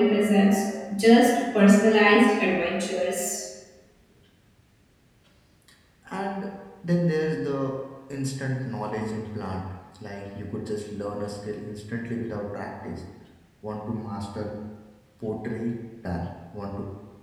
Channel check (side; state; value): both; identical; correlation 1.00